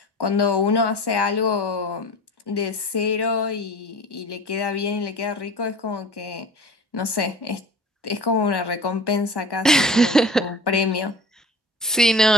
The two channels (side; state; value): both; normal; correlation 0.39